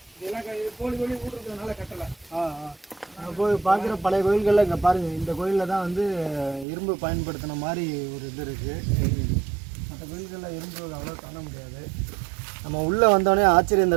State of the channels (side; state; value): left; drops out; at 6.7 s